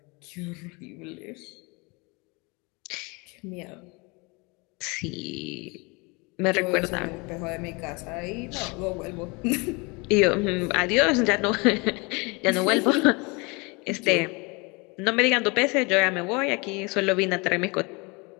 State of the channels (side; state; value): right; quieter; 28.2 dB